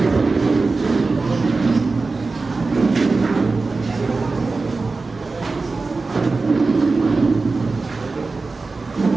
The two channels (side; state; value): left; quieter; 3.9 dB